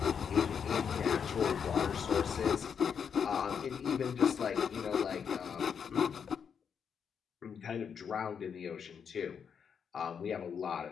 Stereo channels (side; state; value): right; quieter; 7.0 dB